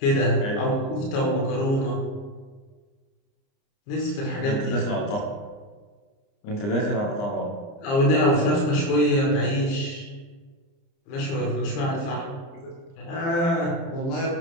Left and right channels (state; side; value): late; right; 30 ms